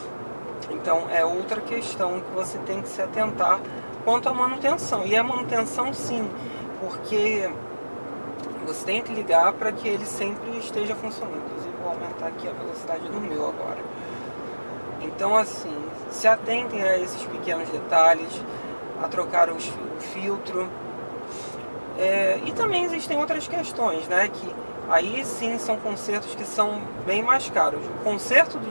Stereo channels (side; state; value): both; inverted; correlation -1.00